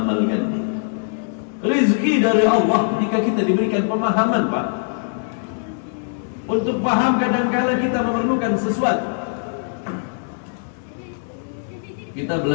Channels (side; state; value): right; silent; 65 dB below the other